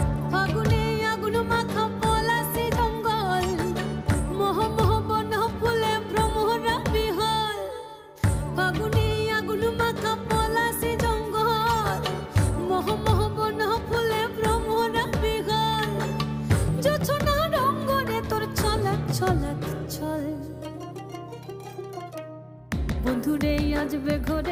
ফাগুনে আগুন মাখা পলাশি জঙ্গল, মোহ মোহ বন ফুলে ভ্রমরা বিহল। ফাগুনে আগুন মাখা পলাশি জঙ্গল, মোহ মোহ বন ফুলে ভ্রমরা বিহল। জোছনা রঙ্গনে তোর ছলক ছলক ছল। বন্ধুরে আজবে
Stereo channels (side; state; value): both; identical; correlation 1.00